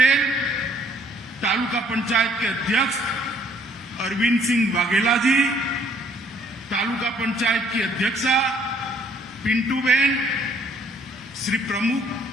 तालुका पंचायत के अध्यक्ष अरविंद सिंह वाघेला जी, तालुका पंचायत की अध्यक्षा पिंटू बेन, श्री प्रमुख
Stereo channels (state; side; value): normal; both; correlation 0.62